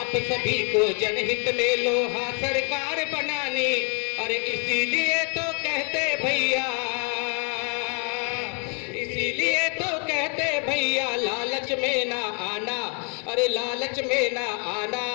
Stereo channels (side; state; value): right; quieter; 38.8 dB